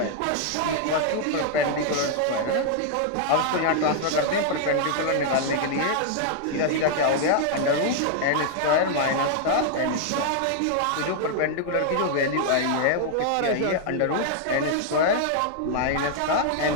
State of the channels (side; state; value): both; different; correlation -0.01